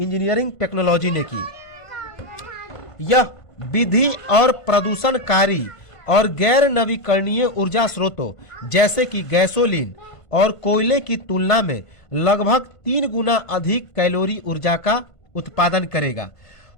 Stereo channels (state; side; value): late; right; 1.5 ms